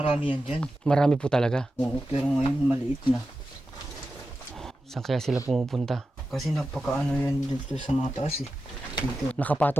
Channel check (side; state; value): both; normal; correlation 0.92